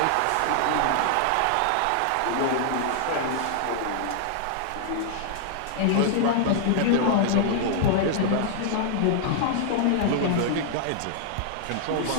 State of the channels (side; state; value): both; different; correlation -0.01